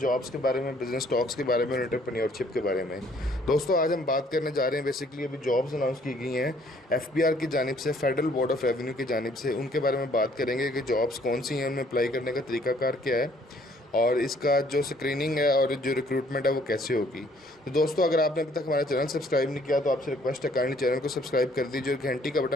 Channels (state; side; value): normal; both; correlation 0.62